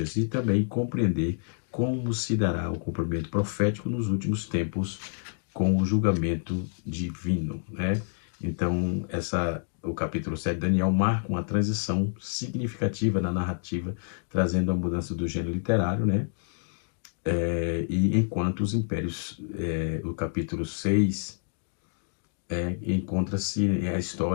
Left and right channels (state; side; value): silent; right; digital silence